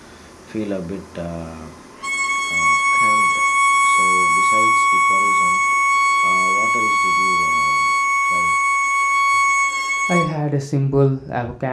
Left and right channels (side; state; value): both; identical; correlation 1.00